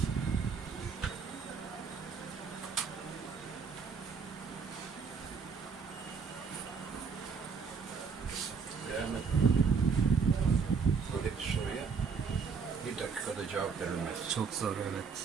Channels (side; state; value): left; quieter; 5.6 dB